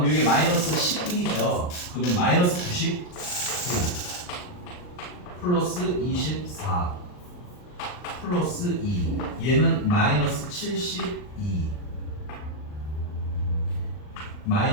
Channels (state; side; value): late; right; 39 ms